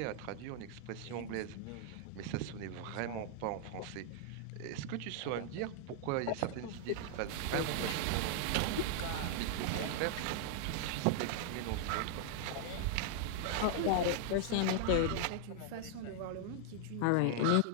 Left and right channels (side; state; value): both; different; correlation -0.01